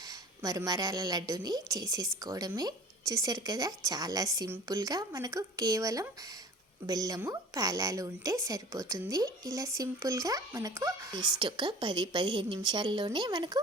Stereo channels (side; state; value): both; normal; correlation 0.43